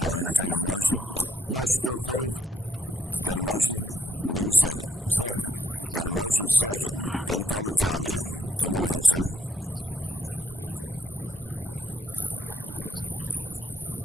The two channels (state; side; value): normal; both; correlation 0.74